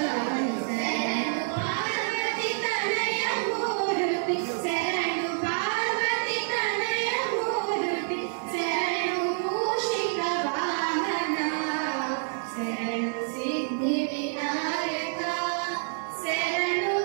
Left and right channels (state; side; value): silent; left; digital silence